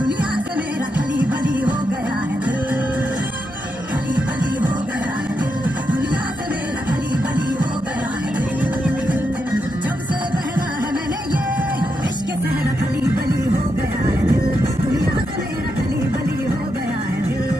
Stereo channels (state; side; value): normal; both; correlation 0.83